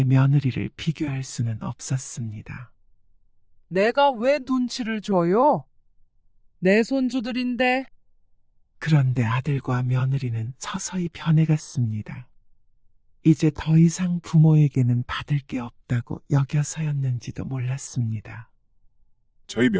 며느리를 비교할 수는 없었습니다. 내가 왜 눈치를 줘요? 내 손주들인데. 그런데 아들과 며느리는 서서히 변해갔습니다. 이제 더 이상 부모에게는 받을 게 없다고 여겨서였는지도 몰랐습니다. 저희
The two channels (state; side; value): identical; both; correlation 1.00